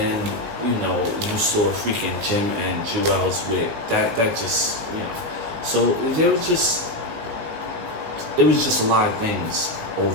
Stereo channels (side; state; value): left; late; 18 ms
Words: you know, you saw freaking Jim and Juelz with that just, you know. So it was just a lot of things